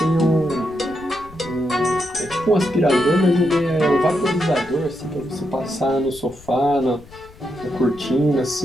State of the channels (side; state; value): left; noise; rumble, 21 dB below the sound